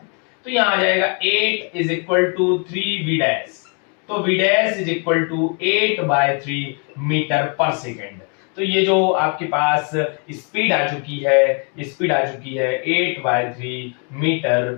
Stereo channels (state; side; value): quieter; right; 38.5 dB